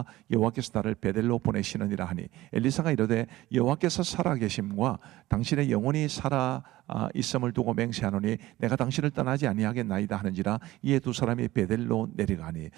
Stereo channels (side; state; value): left; quieter; 17.0 dB